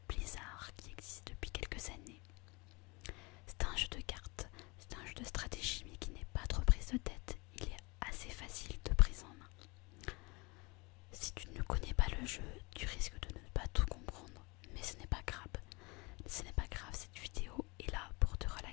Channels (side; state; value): right; quieter; 26.8 dB